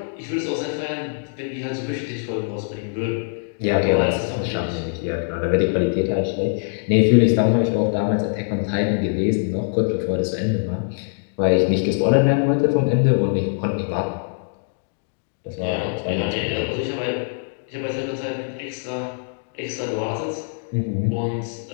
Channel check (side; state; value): right; silent; digital silence